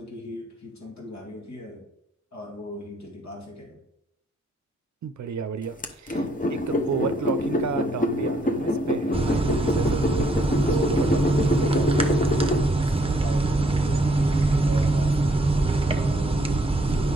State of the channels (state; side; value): normal; both; correlation 0.68